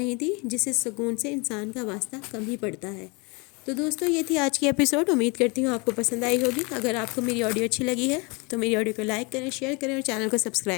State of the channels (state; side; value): quieter; right; 29.3 dB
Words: تھی جسے سکون سے انسان کا واسطہ کم ہی پڑتا ہے۔ تو دوستو یہ تھی آج کی ایپیسوڈ، امید کرتی ہوں آپ کو پسند آئی ہوگی۔ اگر آپ کو میری آڈیو اچھی لگی ہے تو میری آڈیو کو لائک کریں، شیئر کریں اور چینل کو